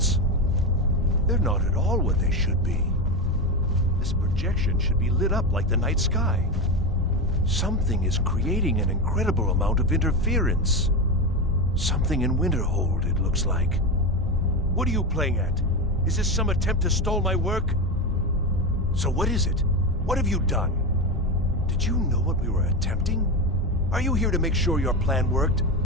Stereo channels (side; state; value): both; normal; correlation 0.17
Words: They're not at all what they should be. This projection should be lit up like the night sky. Something is creating an incredible amount of interference. Something in Winterhold, it looks like. What are you playing at? Is this some attempt to stall my work? So what is it? What have you done? Did you know what we were attempting? Are you here to make sure your plan worked?